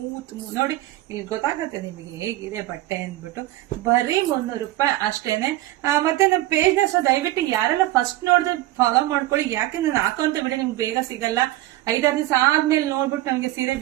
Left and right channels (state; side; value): quieter; left; 16.4 dB